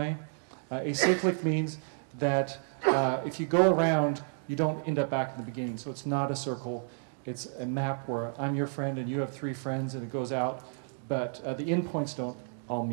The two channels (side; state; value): left; silent; digital silence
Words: Acyclic means that if you go around, you don't end up back in the beginning. So it's not a circle, it's a map where I'm your friend and you have 3 friends and it goes out, but the endpoints don't all